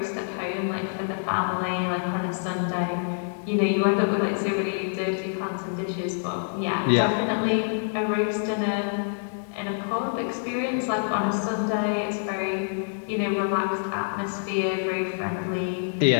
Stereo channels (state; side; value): silent; right; 61 dB below the other